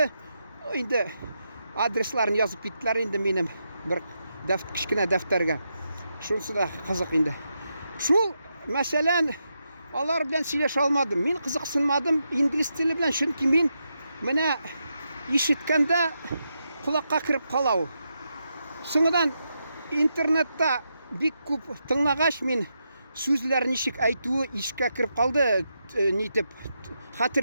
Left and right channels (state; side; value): inverted; both; correlation -0.84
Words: Инде адресларын язып киттеләр инде минем бер кичкенә дәфтәргә. Шунысы да кызык инде. Шул мәсәлән алар белән сөйләшә алмадым. Мин кызыксынмадым инглиз теле белән, чөнки мин менә ишеткәндә кулакка кирип кала ул. Соңыннан интернетта бик күп тыңлагач мин сүзләр ничек әйтүе ишкә кирип калды, нитеп